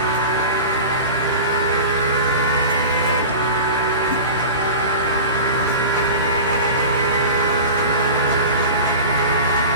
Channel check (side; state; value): both; inverted; correlation -0.32